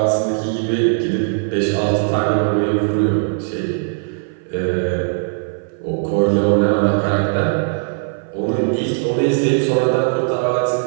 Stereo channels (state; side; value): silent; left; 55 dB below the other